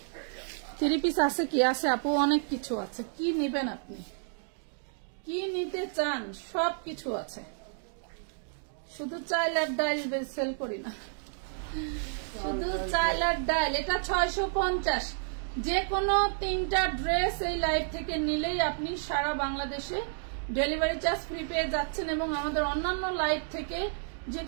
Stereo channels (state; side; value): silent; left; digital silence